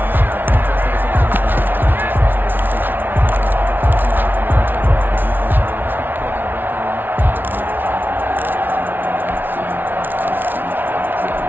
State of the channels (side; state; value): left; late; 0.093 ms